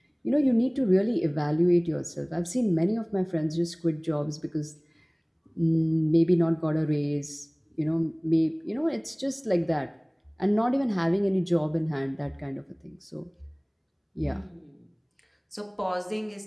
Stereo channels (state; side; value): identical; both; correlation 1.00